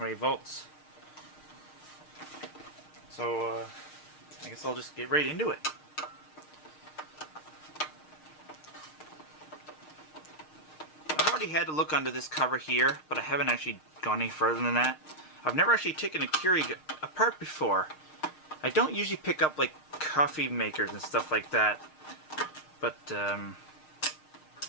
volts. So I guess I'll just get right into it. I've already had to look under this cover here, but I haven't actually gone any further than that. I've never actually taken a Keurig apart before. I don't usually pick up like coffee makers and stuff like that, but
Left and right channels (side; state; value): right; late; 6.5 ms